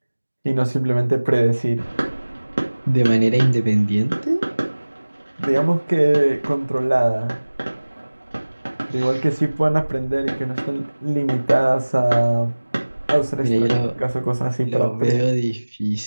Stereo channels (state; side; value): inverted; both; correlation -1.00